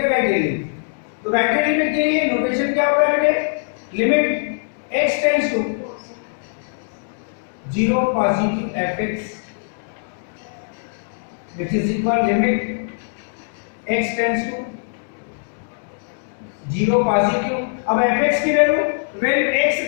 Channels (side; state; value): right; silent; digital silence